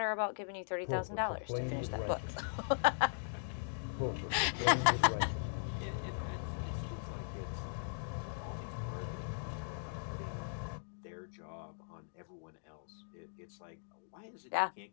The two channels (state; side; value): silent; right; digital silence